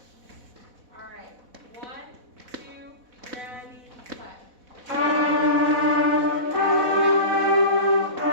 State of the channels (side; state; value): left; late; 4.1 ms